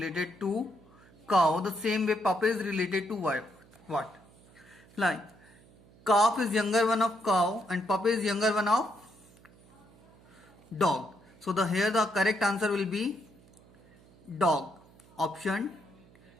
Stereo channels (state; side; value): noise; right; hum, 26 dB below the sound